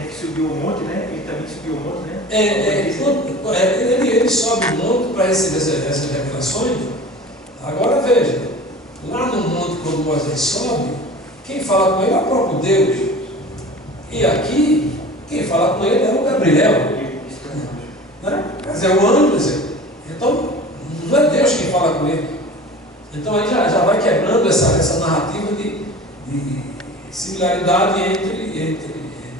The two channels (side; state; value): both; normal; correlation 0.39